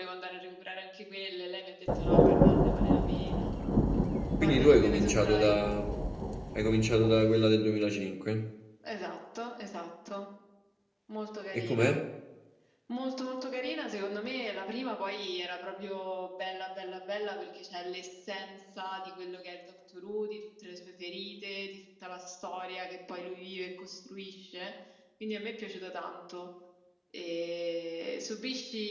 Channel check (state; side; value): identical; both; correlation 1.00